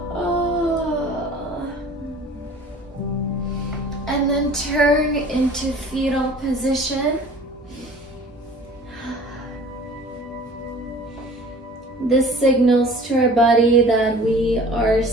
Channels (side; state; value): both; normal; correlation 0.46